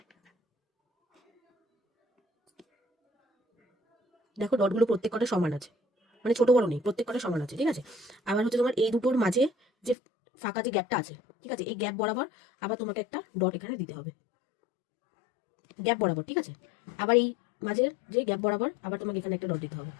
দেখো ডটগুলো প্রত্যেক কটা সমান আছে, মানে ছোট বড় নেই, প্রত্যেক কটা সমান আছে, ঠিক আছে। আবার হচ্ছে তোমার এই দুটোর মাঝে যে ফাঁকা যে গ্যাপটা আছে, ঠিক আছে, এই গ্যাপ বরাবর আবার তোমাকে একটা ডট এখানে দিতে হবে, গ্যাপ বরাবর, ঠিক আছে। আবার এই মাঝের যে গ্যাপ বরাবর আবার তোমাকে এখানে একটা ডট দিতে হবে,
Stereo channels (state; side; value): drops out; right; at 10.0 s